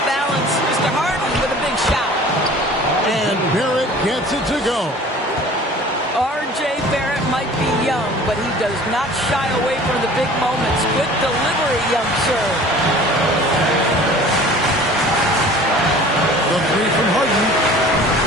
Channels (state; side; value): normal; both; correlation 0.46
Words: balance. Mr. Harden with a big shot. And Barrett gets it to go. R.J. Barrett might be young, but he does not shy away from the big moments. Good delivery, young sir. The 3 from Harden.